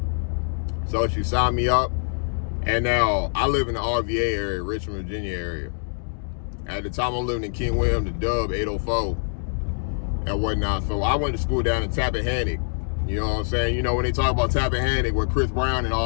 So she signed me up. And now, I live in the RVA area, Richmond, Virginia area. At the time, I'm living in King William, the Dub, 804, and whatnot. So I went to school down in Tappahannock. You know what I'm saying? When they talk about Tappahannock, where Chris Brown and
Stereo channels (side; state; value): right; silent; digital silence